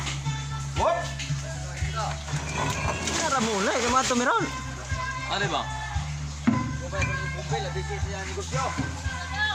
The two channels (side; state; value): both; identical; correlation 1.00